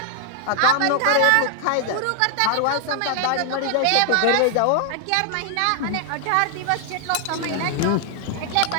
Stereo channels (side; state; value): both; different; correlation 0.00